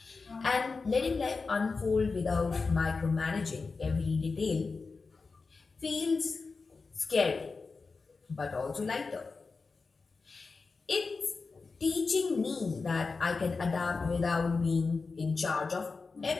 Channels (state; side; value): quieter; right; 4.3 dB